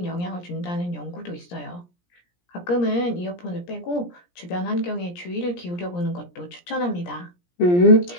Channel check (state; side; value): late; right; 17 ms